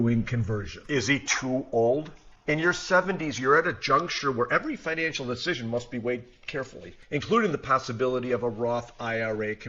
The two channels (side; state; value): both; identical; correlation 1.00